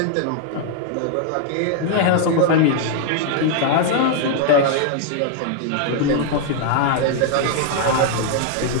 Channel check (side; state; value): both; different; correlation 0.00